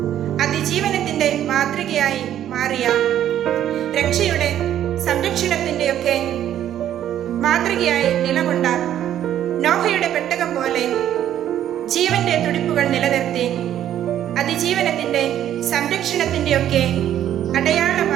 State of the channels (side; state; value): left; quieter; 11.2 dB